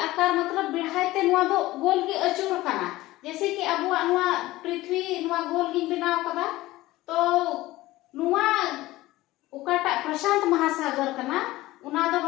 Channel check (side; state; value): right; quieter; 17.7 dB